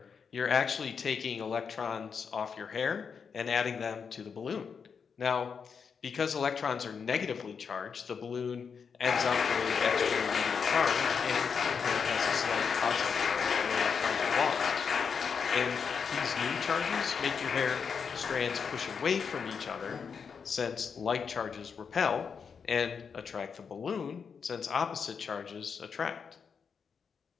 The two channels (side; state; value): right; quieter; 6.2 dB